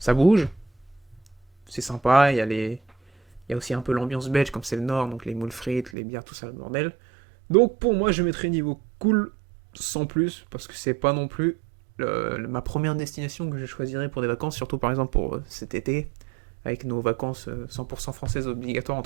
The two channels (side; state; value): left; drops out; at 5.9 s